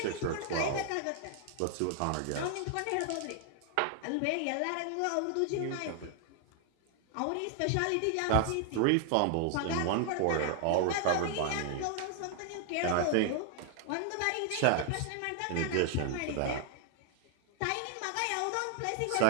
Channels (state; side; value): different; both; correlation 0.00